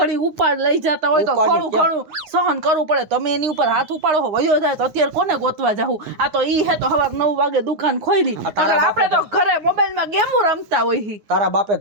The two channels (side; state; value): left; late; 9.5 ms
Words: ઉપાડ લઈ જતા હોય તો ઉપાડી થોડું ઘણું સહન કરવું પડે તમે એની ઉપર હાથ ઉપાડો હો વયો જાય તો અત્યારે કોને ગોતવા જાવું આ તો ઈ હે તો સવાર 9 વાગે દુકાન ખોલી આ તારા અગર આપણે તો ઘરે મોબાઈલમાં ગેમો રમતા હોય હી. તારા બાપે